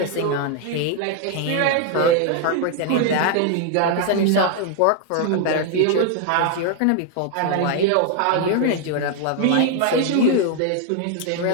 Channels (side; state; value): both; different; correlation 0.00